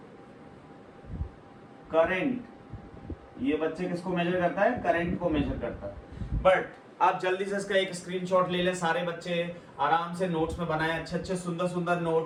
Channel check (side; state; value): both; identical; correlation 1.00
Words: current. ये बच्चे किसको मेजर करता है? करंट को मेजर करता है। बट आप जल्दी से इसका एक स्क्रीनशॉट ले लें, सारे बच्चे आराम से नोट्स में बनाएं, अच्छे अच्छे सुंदर सुंदर